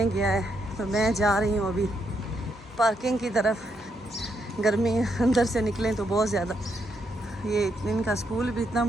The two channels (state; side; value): normal; both; correlation 0.78